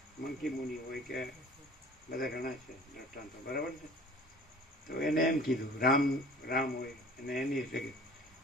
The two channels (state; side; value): normal; both; correlation 0.46